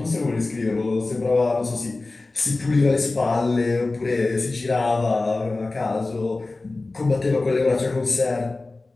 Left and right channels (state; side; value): quieter; right; 3.3 dB